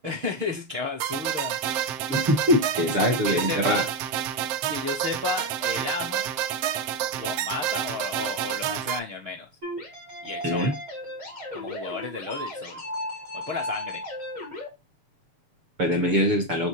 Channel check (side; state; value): left; late; 7.6 ms